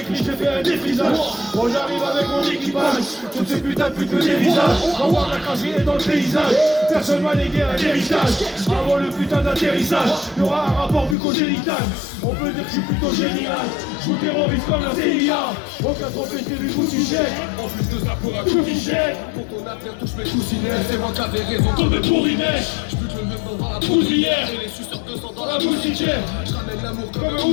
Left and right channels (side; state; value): right; drops out; at 11.2 s